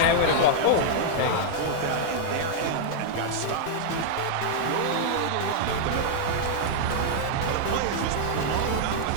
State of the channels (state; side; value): different; both; correlation -0.01